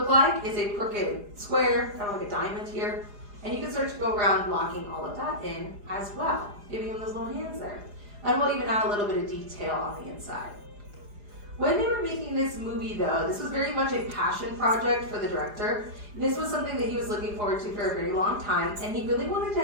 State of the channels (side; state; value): left; late; 4.9 ms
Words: like is a crooked square, kind of like a diamond here. And you can start to go around blocking all of that in as well, giving him those little hands there. And we'll even add a little bit of detail on the inside. When they were making this movie though, this was very much a passion project for the director. This was something that he was looking forward to for a very long time, and he really wanted to